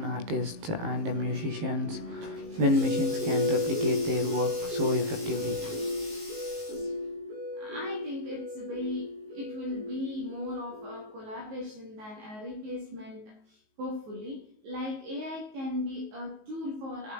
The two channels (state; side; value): late; left; 19 ms